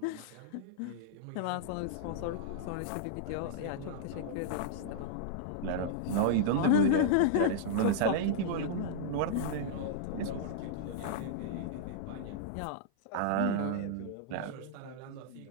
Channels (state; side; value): different; both; correlation -0.01